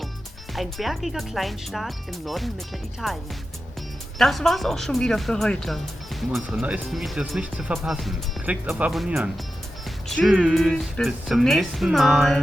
ein bergiger Kleinstaat im Norden Mittelitaliens. Das war's auch schon wieder für heute. Um unsere neuesten Videos nicht zu verpassen, klickt auf Abonnieren. Tschüss, bis zum nächsten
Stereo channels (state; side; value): normal; both; correlation 0.92